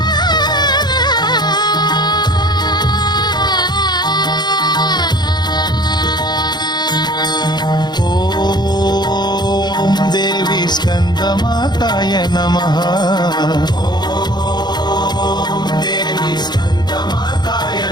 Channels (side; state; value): right; late; 0.21 ms